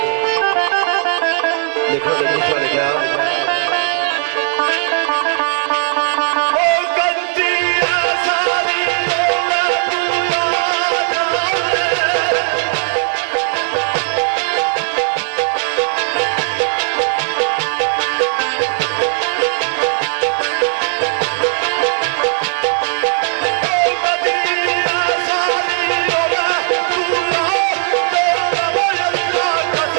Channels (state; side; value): silent; left; digital silence